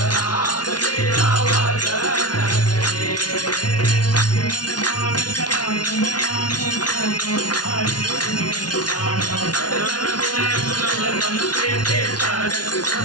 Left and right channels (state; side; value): late; right; 0.69 ms